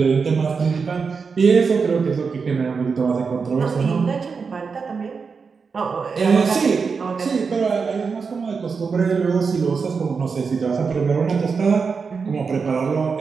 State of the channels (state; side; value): quieter; left; 5.3 dB